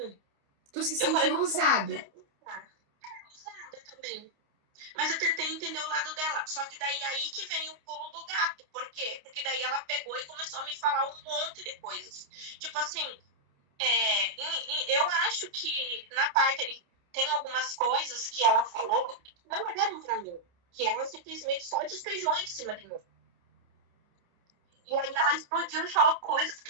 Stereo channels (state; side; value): late; left; 29 ms